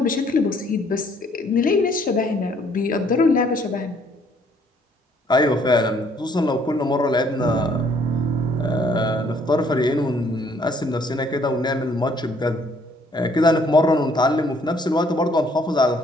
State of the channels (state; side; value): normal; both; correlation 0.64